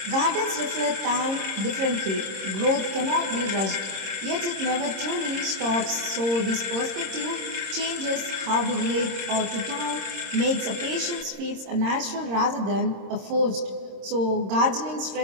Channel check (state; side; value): late; left; 26 ms